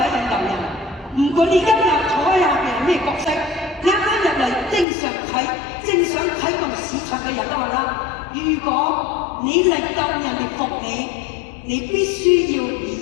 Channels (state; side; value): drops out; right; at 4.9 s